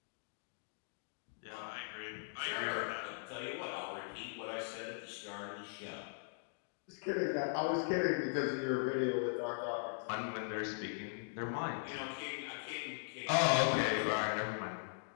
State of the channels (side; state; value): right; silent; digital silence